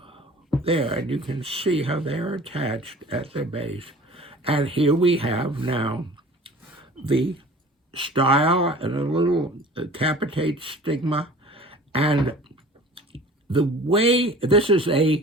There, and you can see how they're attached at the base. And here we have now the style and a little capitate stigma, and the way this is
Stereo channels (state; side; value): normal; both; correlation 0.44